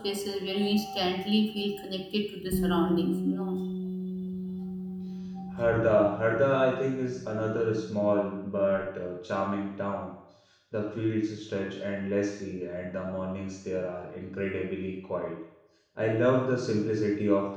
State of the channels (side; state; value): both; identical; correlation 1.00